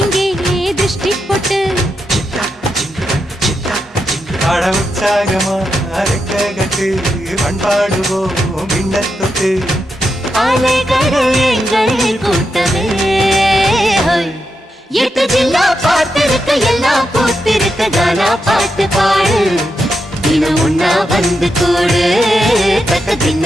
இங்கே திருஷ்டி போட்டு பட உற்சாகமா அரைக்க கட்டு பண்பாடுவோம் மின்னத்தொட்டு அலைகள் எங்கள் கூட்டமே எட்டு ஜில்லா பார்த்திருக்க எல்லாம் பூத்திருக்க கானா பாட்டு பாடு தினம் ஒன்னா வந்து கூடு தக்க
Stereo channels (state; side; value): normal; both; correlation 0.86